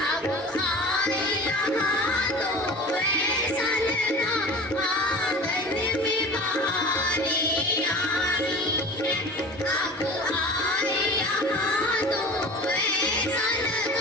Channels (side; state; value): both; normal; correlation 0.38